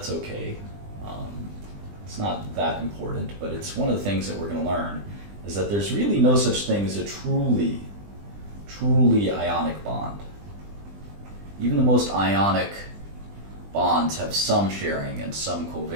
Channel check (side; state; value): left; late; 20 ms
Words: okay. It's not that important, but it's one of the things that we're going to learn is that there's really no such thing as a truly ionic bond. Even the most ionic bonds have some sharing and some